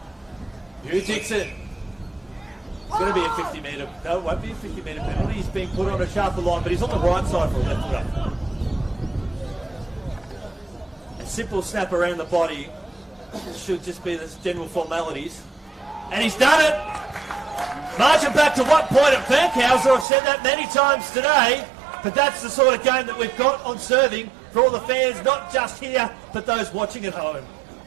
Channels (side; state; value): left; drops out; at 20.1 s